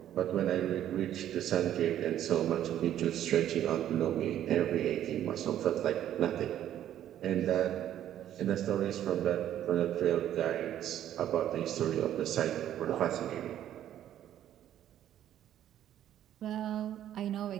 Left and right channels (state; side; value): quieter; left; 11.4 dB